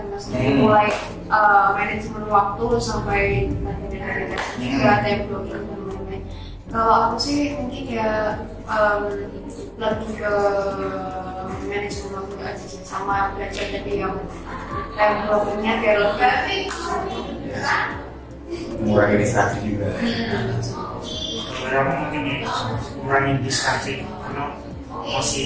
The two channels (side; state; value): both; identical; correlation 1.00